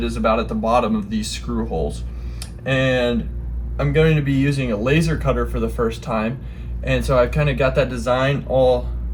is about at the bottom of these screw holes. And I'm going to be using a laser cutter for the first time. And so I've kind of got that design all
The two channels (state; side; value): identical; both; correlation 1.00